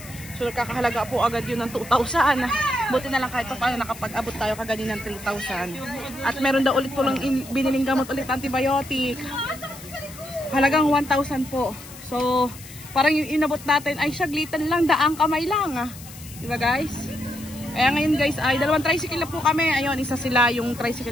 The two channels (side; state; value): left; noise; hiss, 17 dB below the sound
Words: So, nakakahalaga po agad yun ng 2,000. Buti na lang kahit pa paano nakapag-abot tayo kaganin ng 3,000. At meron daw ulit po lang biniling gamot ulit antibiotic. Halagang 1,000 po. So, parang yung inabot natin ay saglitan lang, daang kamay lang. Diba guys? Kaya ngayon guys, ay dalawang tricycle na po kami. Ayun, isa sila yung